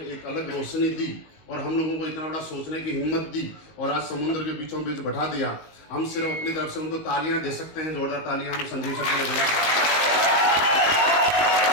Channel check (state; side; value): late; right; 19 ms